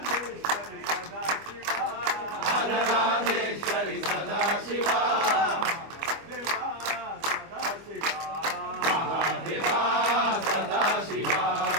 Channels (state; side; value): late; left; 25 ms